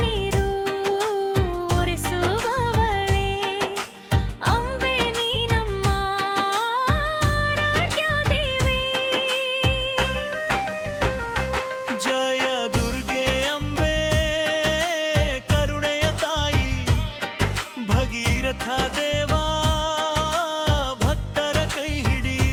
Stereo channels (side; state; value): both; identical; correlation 1.00